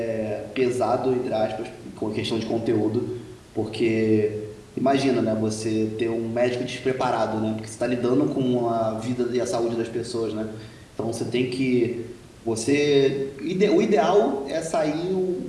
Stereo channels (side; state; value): both; identical; correlation 1.00